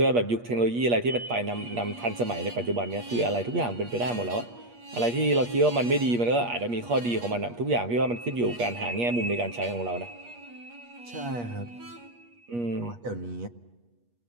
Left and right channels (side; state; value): left; late; 8.4 ms